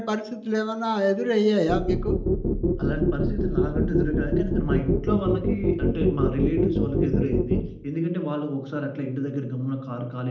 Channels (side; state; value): both; identical; correlation 1.00